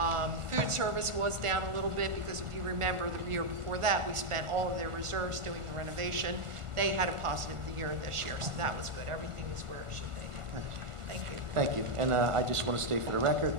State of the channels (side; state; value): left; late; 1.5 ms